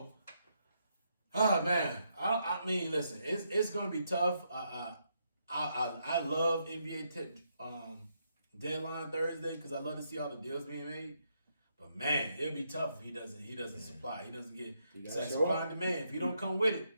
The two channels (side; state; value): both; inverted; correlation -0.78